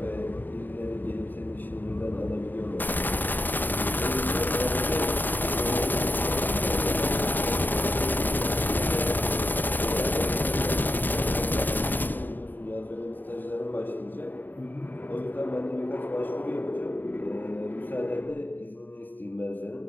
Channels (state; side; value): late; right; 0.089 ms